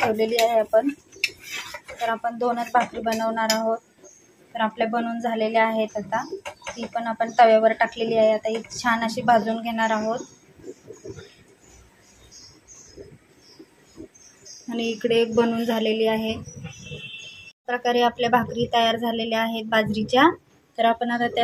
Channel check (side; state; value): both; identical; correlation 1.00